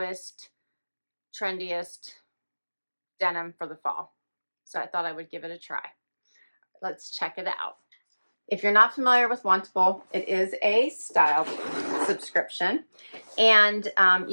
trendiest denim for the fall. So I thought I would give it a try. Let's check it out. If you're not familiar with Wantable, it is a style subscription, and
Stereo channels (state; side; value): inverted; both; correlation -1.00